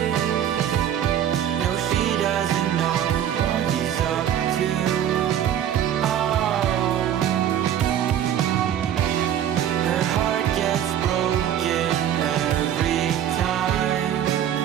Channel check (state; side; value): quieter; left; 10.3 dB